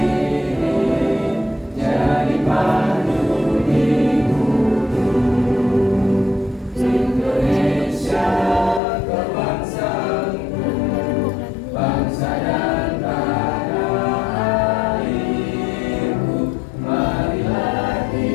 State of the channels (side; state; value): right; drops out; at 8.8 s